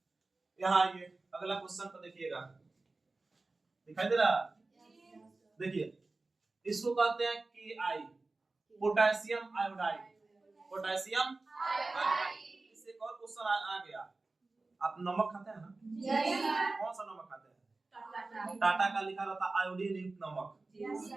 यहाँ ये अगला क्वेश्चन को देखिएगा, दिखाई दे रहा देखिए इसको कहते हैं कि आई पोटेशियम आयोडाइड, पोटेशियम आयोडाइड। इससे एक और क्वेश्चन आ गया, आप नमक खाते हैं ना कौन सा नमक खाते हैं टाटा का लिखा रहता आयोडीन युक्त नमक।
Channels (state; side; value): quieter; left; 3.4 dB